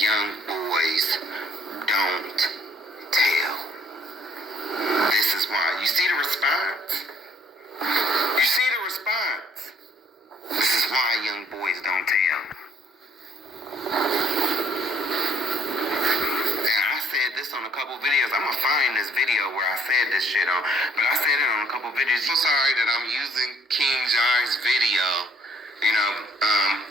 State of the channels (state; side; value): normal; both; correlation 0.61